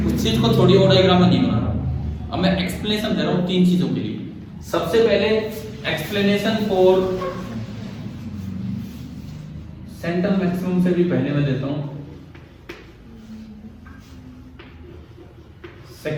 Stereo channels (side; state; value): both; identical; correlation 1.00